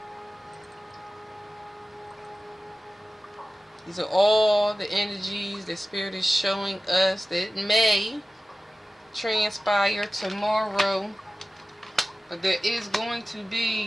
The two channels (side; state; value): both; normal; correlation 0.96